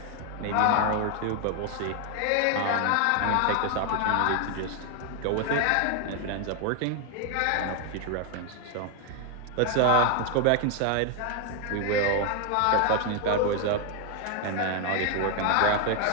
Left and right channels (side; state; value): both; different; correlation 0.01